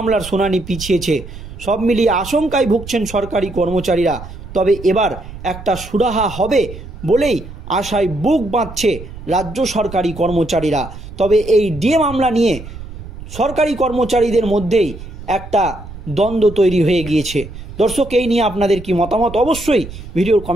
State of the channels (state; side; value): noise; right; rumble, 13 dB below the sound